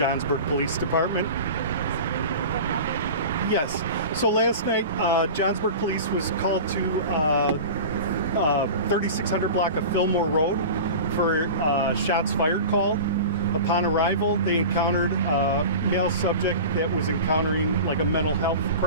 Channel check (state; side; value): inverted; both; correlation -0.33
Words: Police Department. Yes. So last night, Johnsburg Police was called to 3600 block of Fillmore Road for shots fired call. Upon arrival, they encountered a male subject that was encountering like a mental health